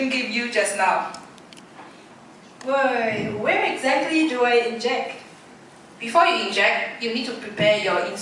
gave you just now. Boy, where exactly do I inject? Before you inject, you need to prepare your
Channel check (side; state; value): both; identical; correlation 1.00